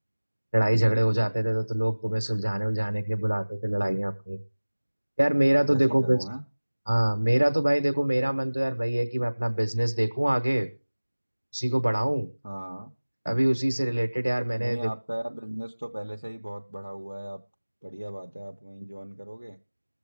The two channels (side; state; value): both; inverted; correlation -1.00